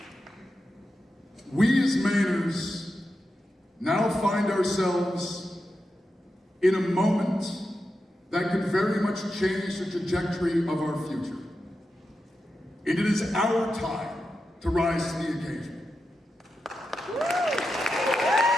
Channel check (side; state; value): both; normal; correlation 0.89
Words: We as Mainers now find ourselves in a moment that could very much change the trajectory of our future. And it is our time to rise to the occasion.